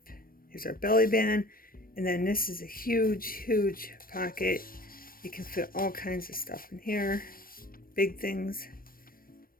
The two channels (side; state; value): right; late; 0.42 ms